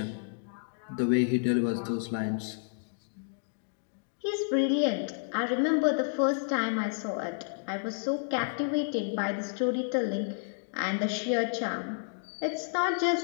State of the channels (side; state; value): right; silent; digital silence